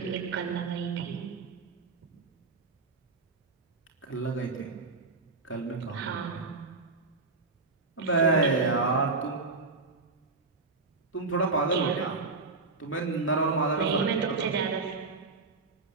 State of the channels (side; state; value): left; quieter; 3.8 dB